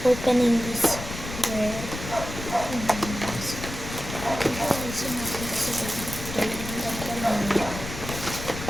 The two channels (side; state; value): left; noise; rumble, 9 dB below the sound